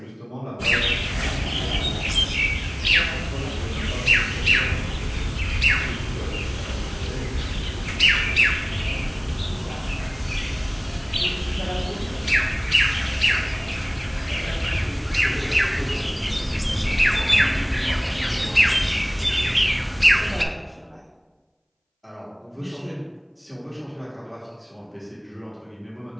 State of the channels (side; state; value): both; identical; correlation 1.00